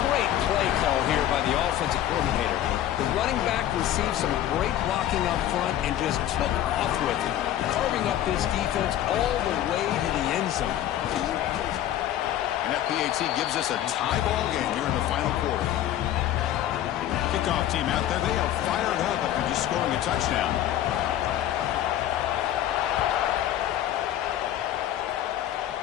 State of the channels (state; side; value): quieter; right; 12.1 dB